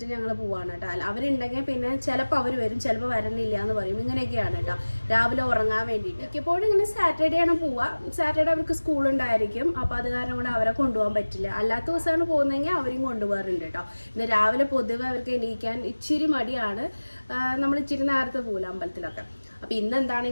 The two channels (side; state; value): both; inverted; correlation -1.00